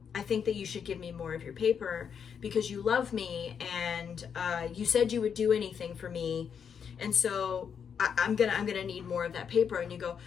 I think that you should give me more of your paper because you love me, and you said you would do anything for me, and so I'm gonna need more of that paper. And you go,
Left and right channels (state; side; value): quieter; right; 7.2 dB